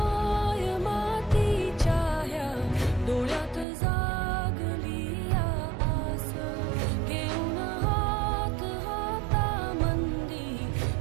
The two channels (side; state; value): left; drops out; at 3.7 s